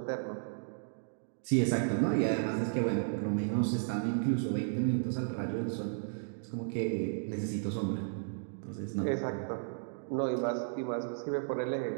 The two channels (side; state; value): left; silent; digital silence